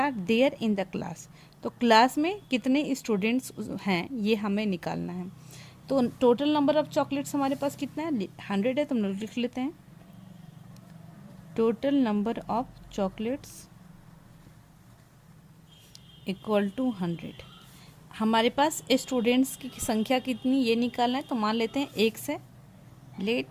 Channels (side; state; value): both; identical; correlation 1.00